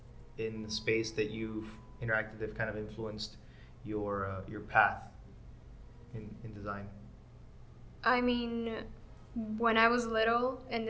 in the space that you've interacted that have kind of influenced your path in design? I mean, when I was little, and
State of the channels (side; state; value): both; identical; correlation 1.00